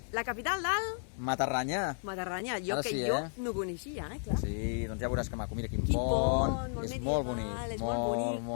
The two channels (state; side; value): silent; right; 56 dB below the other